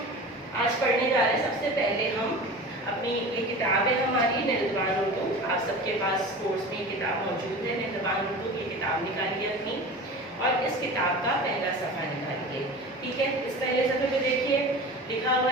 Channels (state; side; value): normal; both; correlation 0.34